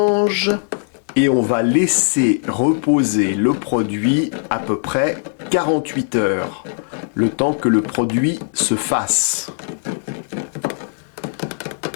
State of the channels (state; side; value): silent; right; digital silence